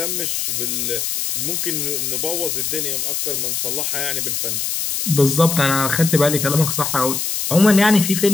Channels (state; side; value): noise; left; hiss, 1 dB below the sound